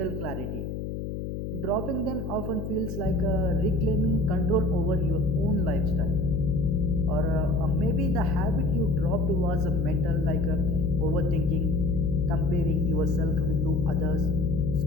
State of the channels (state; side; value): noise; left; hum, 5 dB below the sound